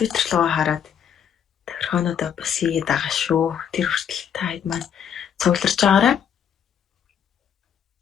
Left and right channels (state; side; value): quieter; right; 8.4 dB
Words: руу хараад тохирхоонуудаа бас хийгээд байгаа шүү. Тэр хүртэл та хэд маань цугларч байгаарай.